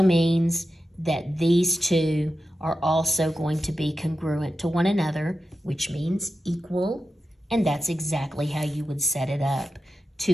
means that these two are also going to be congruent to one another, which means equal, and that's exactly how you would set it up.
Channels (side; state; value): both; normal; correlation 0.90